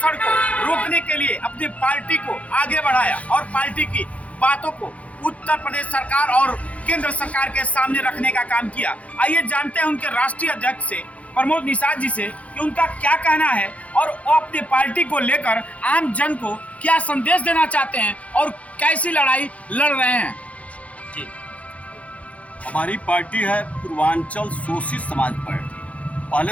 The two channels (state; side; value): late; right; 0.066 ms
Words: को रोकने के लिए अपनी पार्टी को आगे बढ़ाया और पार्टी की बातों को उत्तर प्रदेश सरकार और केंद्र सरकार के सामने रखने का काम किया। आइए जानते हैं उनके राष्ट्रीय अध्यक्ष से, प्रमोद निषाद जी से, कि उनका क्या कहना है और वो अपनी पार्टी को लेकर आम जन को क्या संदेश देना चाहते हैं और कैसी लड़ाई लड़ रहे हैं। जी, हमारी पार्टी है पूर्वांचल शोषित समाज पार्टी।